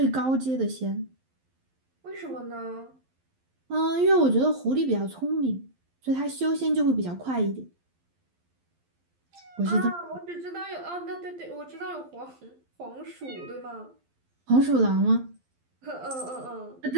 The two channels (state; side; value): late; left; 12 ms